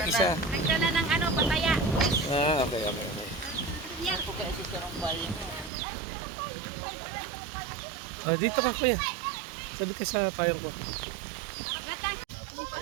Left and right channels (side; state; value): left; drops out; at 5.7 s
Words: isa. Nagdala ng pataya. Okay, okay, okay. Dito ka, kuya. Sabi ka sa payong ko.